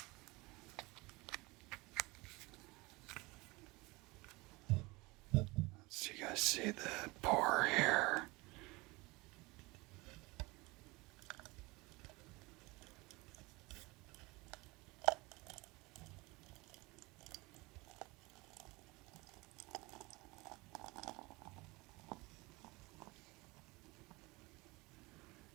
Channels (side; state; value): left; quieter; 23.6 dB